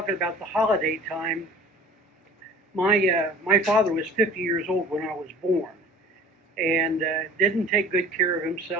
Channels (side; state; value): both; normal; correlation 0.45